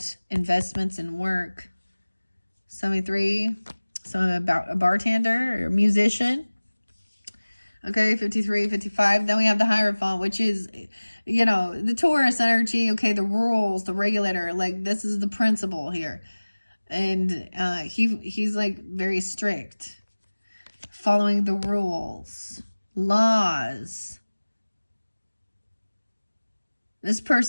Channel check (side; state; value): both; inverted; correlation -1.00